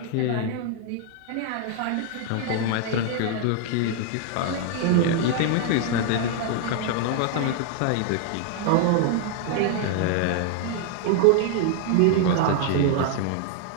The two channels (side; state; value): both; different; correlation 0.00